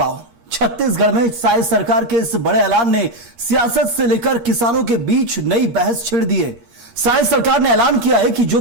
छत्तीसगढ़ में साय सरकार के इस बड़े ऐलान ने सियासत से लेकर किसानों के बीच नई बहस छेड़ दी है। साय सरकार ने ऐलान किया है कि जो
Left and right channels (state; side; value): late; left; 13 ms